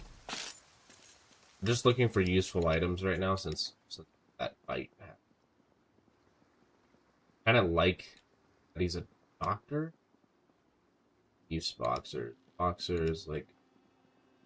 Just looking for useful items right now since that fight happened. Kind of like that he's a doctor. Use boxers. boxers, like.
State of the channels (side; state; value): both; identical; correlation 1.00